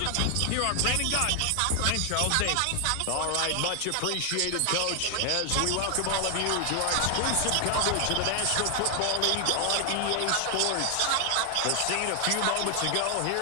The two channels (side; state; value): both; different; correlation 0.00